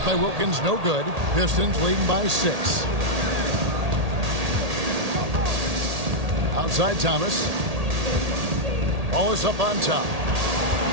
by Wilkins no good. Pistons leading by 6. Outside Thomas. Wallace up on top.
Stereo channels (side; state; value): left; late; 1.8 ms